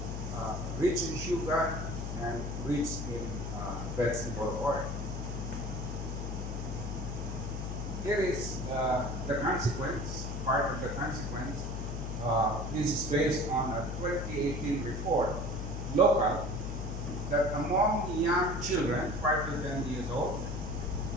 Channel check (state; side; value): noise; left; hum, 4 dB below the sound